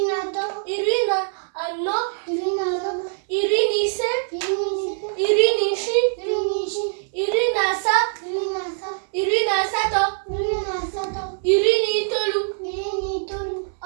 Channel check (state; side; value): silent; left; digital silence